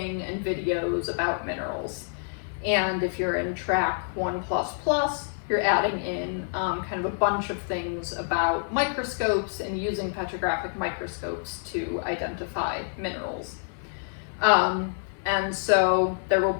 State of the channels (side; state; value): right; silent; digital silence